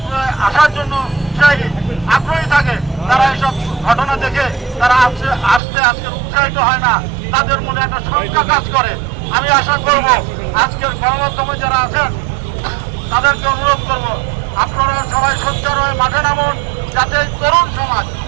আসার জন্য আগ্রহী থাকে, তারা এইসব ঘটনা দেখে তারা আজকে উৎসাহিত হয় না, তাদের মনে একটা শঙ্কা কাজ করে। আমি আশা করব আজকের গণমাধ্যমে যারা আছেন তাদেরকে অনুরোধ করব, আপনারা সবাই সোচ্চার হয়ে মাঠে নামুন, যাতে এই তরুণ সমাজ,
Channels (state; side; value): drops out; left; at 5.6 s